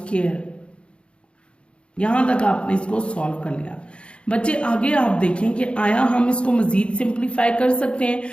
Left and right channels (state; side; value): late; right; 0.057 ms